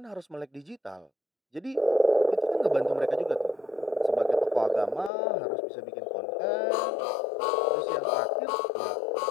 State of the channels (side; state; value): right; drops out; at 5.1 s